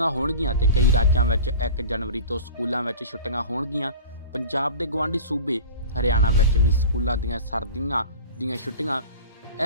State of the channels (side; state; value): both; inverted; correlation -0.37